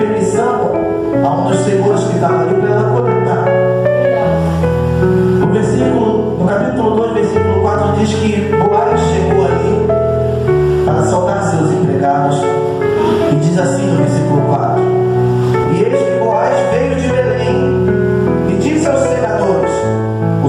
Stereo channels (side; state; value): both; identical; correlation 1.00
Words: a um dos senhores que estava ali para ela coletar. No capítulo 2, versículo 4, diz que Boaz chegou ali para saudar seus empregados, e diz assim no versículo 4: e eis que Boaz veio de Belém e disse aos segadores: o